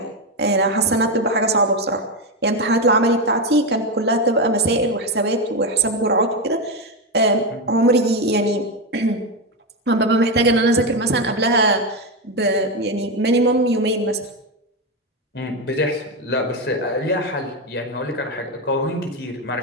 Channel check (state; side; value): normal; both; correlation 0.10